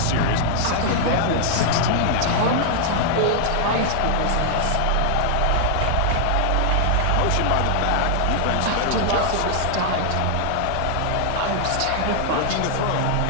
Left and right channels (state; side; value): different; both; correlation 0.00